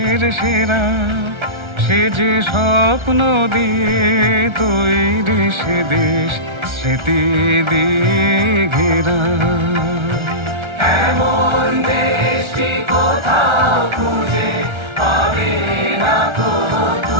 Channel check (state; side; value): late; left; 1.3 ms